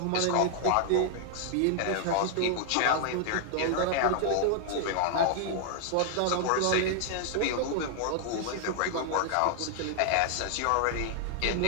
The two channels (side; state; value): both; different; correlation 0.00